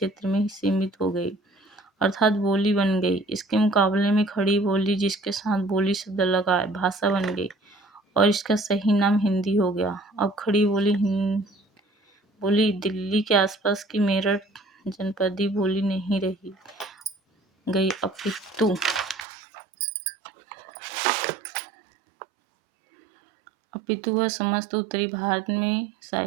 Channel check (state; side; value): drops out; left; at 19.2 s